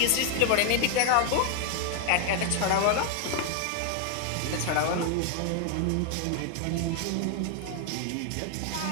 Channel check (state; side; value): different; both; correlation 0.00